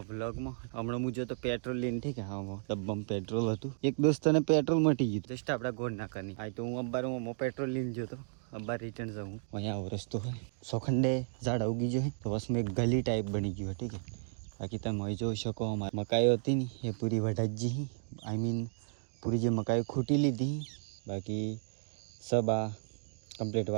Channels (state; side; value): silent; left; digital silence